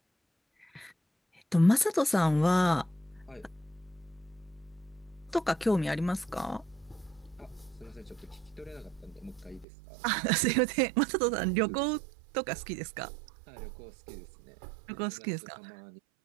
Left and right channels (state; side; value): drops out; left; at 9.7 s